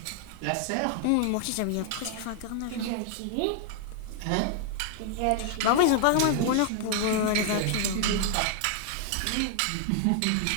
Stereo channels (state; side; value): different; both; correlation 0.00